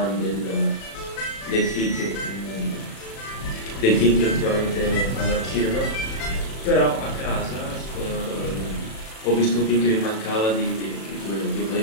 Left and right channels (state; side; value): late; right; 36 ms